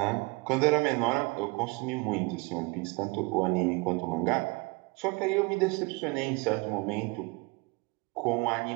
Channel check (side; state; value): left; quieter; 27.6 dB